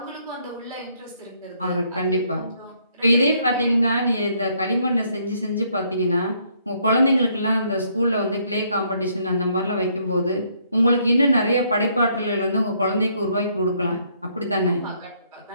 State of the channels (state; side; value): inverted; both; correlation -0.69